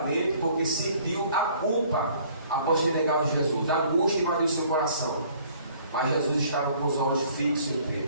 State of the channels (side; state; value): both; inverted; correlation -0.57